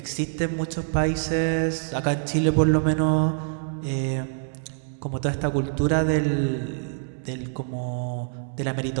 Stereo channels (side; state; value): left; silent; digital silence